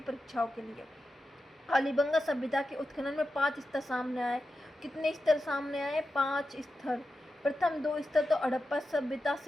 परीक्षाओं के लिए। कालीबंगा सभ्यता के उत्खनन में 5 स्तर सामने आए। कितने स्तर सामने आए? 5 स्तर। प्रथम 2 स्तर तो हड़प्पा सभ्यता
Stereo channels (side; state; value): both; normal; correlation 0.90